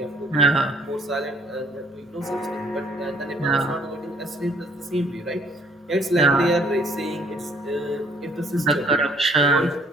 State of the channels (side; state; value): both; normal; correlation 0.62